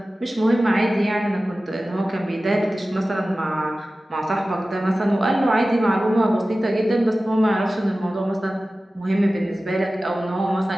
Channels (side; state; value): both; normal; correlation 0.96